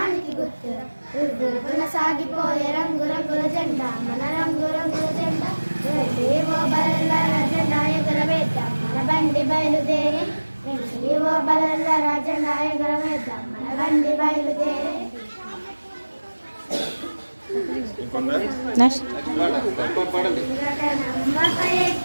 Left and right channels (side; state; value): both; inverted; correlation -1.00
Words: గుర్తురా రివ్వు రివ్వున సాగిపోయే రంగు రంగుల జెండా మన రంగు రంగుల జెండా ఏవో బలల్ల జెండా ఎగరవేద్దాం మన బండి బయలుదేరి ఏవో బలల్ల జెండా ఎగరవేద్దాం మన బండి బయలుదేరి